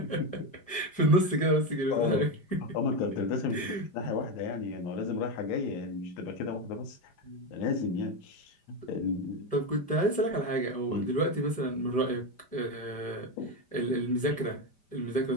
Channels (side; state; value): right; late; 5.0 ms